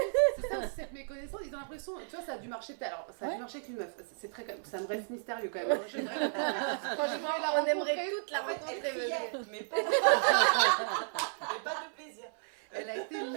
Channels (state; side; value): silent; left; 55 dB below the other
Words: c'est ça aussi cette méconnaissance, ils ont l'impression, tu vois, ça a dû marcher peut-être. Alors ça a dû marcher avec une meuf, c'est très, ça me reste mystérieux quand même. Hein. Franchement, on aimerait toute la Elle rencontrer. criait, mais pas de plaisir. Elle a été